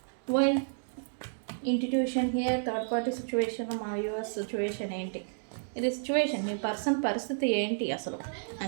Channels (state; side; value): silent; left; digital silence